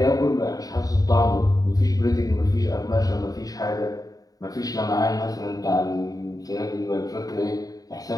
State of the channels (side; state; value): right; late; 0.18 ms